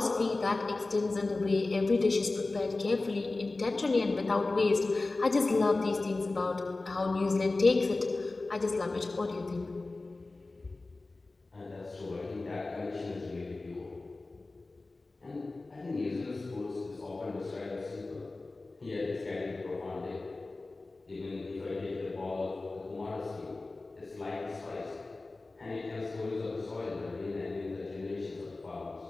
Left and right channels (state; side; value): quieter; right; 3.3 dB